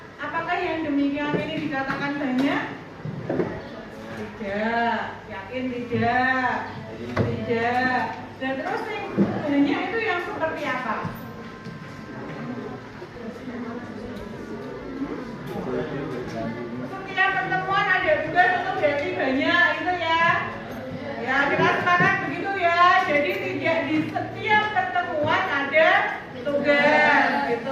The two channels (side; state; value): both; identical; correlation 1.00